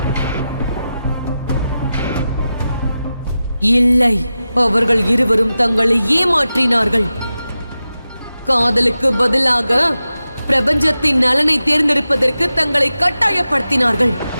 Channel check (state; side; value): inverted; both; correlation -0.92